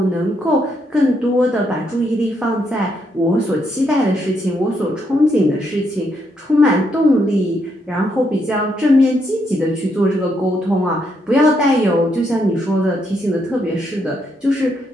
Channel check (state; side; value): normal; both; correlation 0.77